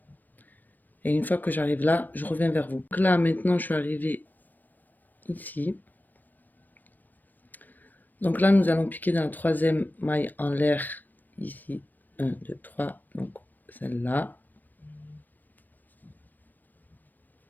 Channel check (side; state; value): right; late; 0.085 ms